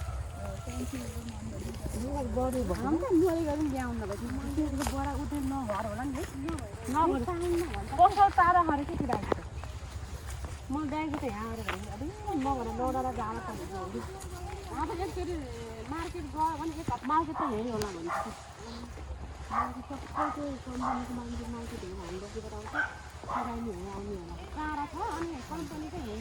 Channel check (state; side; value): identical; both; correlation 1.00